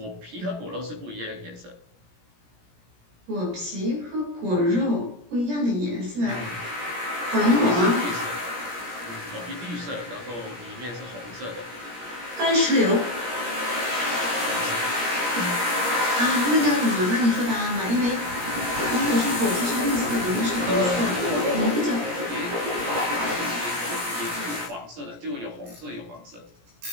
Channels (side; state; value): left; late; 17 ms